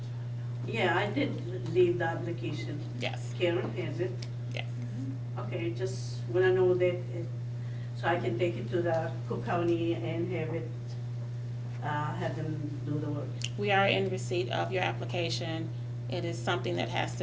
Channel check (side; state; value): both; identical; correlation 1.00